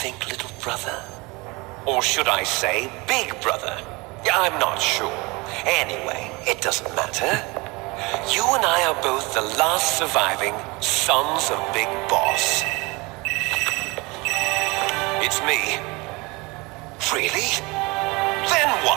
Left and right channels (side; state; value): left; quieter; 25.4 dB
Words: little brother? Or should I say, big brother? I'm not sure. Anyway, it doesn't matter. You and I are both the last surviving sons of Big Boss. It's me. Really? Then